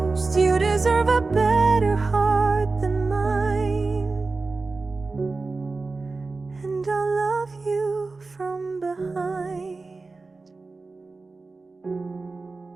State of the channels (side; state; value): left; quieter; 3.8 dB